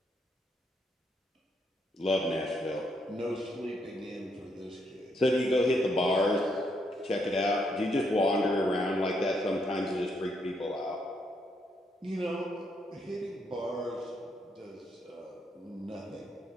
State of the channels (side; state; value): both; normal; correlation 0.76